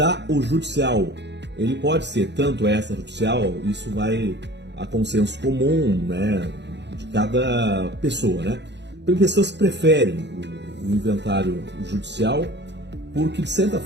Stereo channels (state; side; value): late; left; 0.51 ms